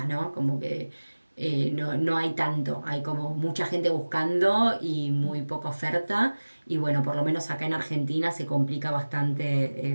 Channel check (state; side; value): inverted; both; correlation -1.00